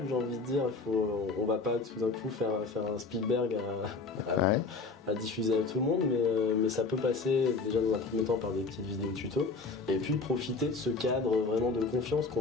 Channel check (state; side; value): quieter; right; 4.0 dB